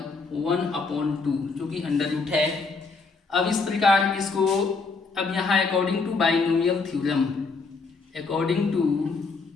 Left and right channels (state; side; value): quieter; right; 4.3 dB